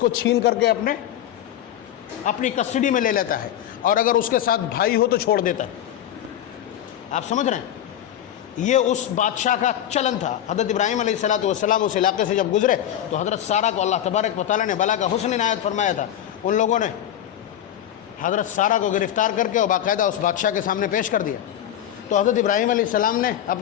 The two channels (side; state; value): right; quieter; 11.1 dB